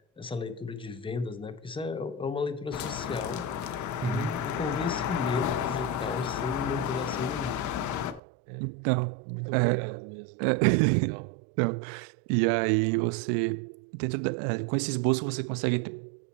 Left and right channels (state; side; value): drops out; left; at 8.2 s